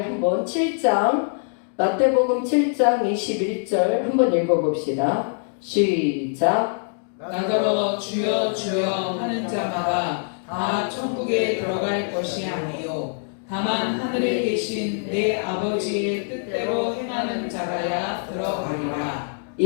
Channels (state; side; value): silent; right; digital silence